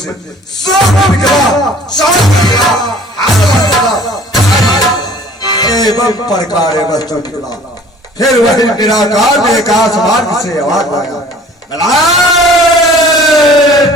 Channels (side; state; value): both; normal; correlation 0.51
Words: सांप निकला, एवं प्रकार वस्तु निकला। फिर वही निराकार ने आकाश मार्ग से आवाज आया,